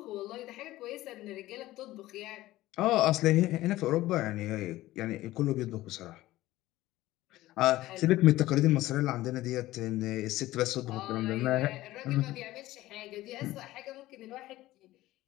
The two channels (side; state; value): right; quieter; 16.6 dB